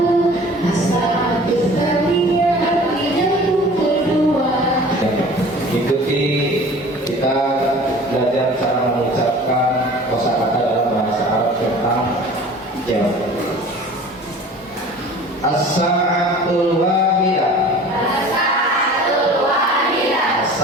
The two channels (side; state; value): both; normal; correlation 0.44